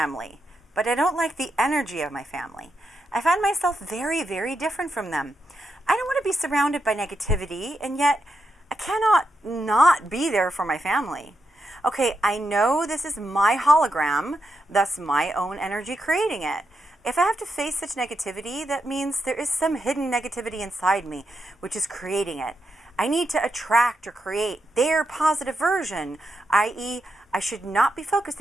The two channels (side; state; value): both; normal; correlation 0.84